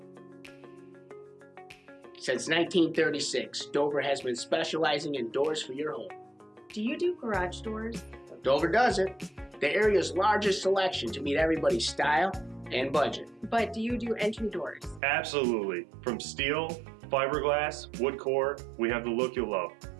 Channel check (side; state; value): left; drops out; at 15.0 s